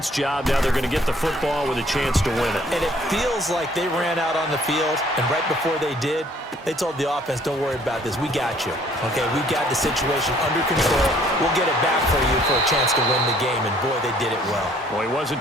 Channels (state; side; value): normal; both; correlation 0.60